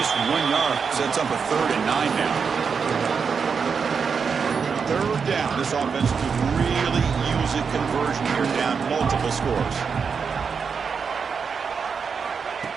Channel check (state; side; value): quieter; left; 5.9 dB